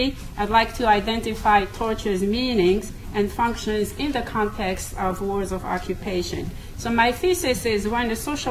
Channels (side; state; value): both; identical; correlation 1.00